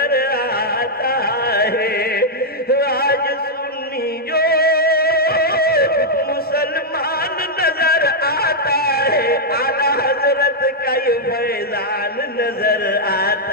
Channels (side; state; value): both; normal; correlation -0.04